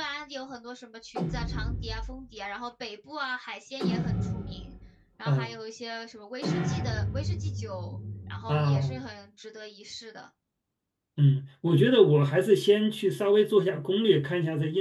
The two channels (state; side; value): identical; both; correlation 1.00